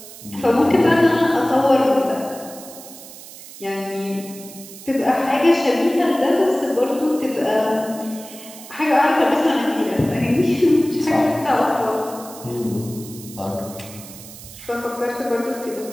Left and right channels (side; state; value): right; noise; hiss, 16 dB below the sound